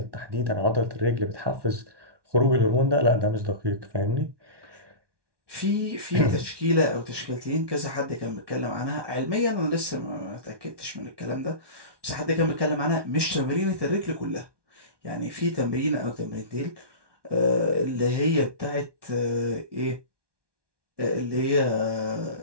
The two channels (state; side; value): late; left; 1.2 ms